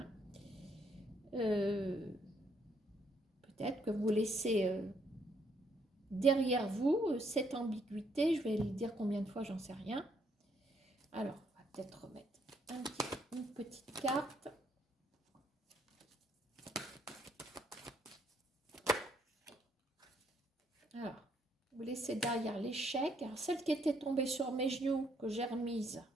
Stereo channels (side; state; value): both; normal; correlation 0.71